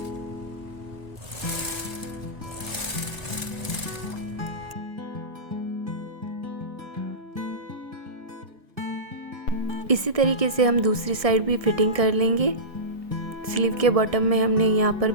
इसी तरीके से हम दूसरी साइड भी फिटिंग कर लेंगे। स्लीव के बॉटम में हमने यहाँ पर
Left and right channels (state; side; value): late; left; 1.5 ms